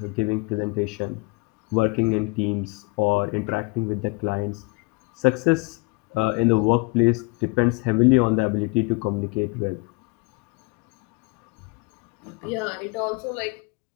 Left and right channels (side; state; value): right; quieter; 27.5 dB